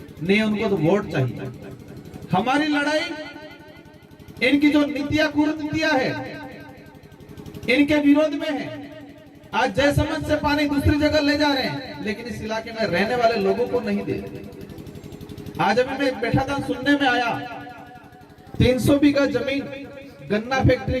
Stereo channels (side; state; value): both; identical; correlation 1.00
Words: नहीं, उनको तो वोट चाहिए। हमारी लड़ाई इनकी जो नीतियां कुरीतियां है इनके विरोध में है। आज जयसमंद से पानी दूसरी जगह ले जा रहे हैं, लेकिन इस इलाके में रहने वाले लोगों को नहीं दे रहे। आज अभी मैं बैठा था, सुनने में आया 300 बीघा जमीन गन्ना फैक्ट्री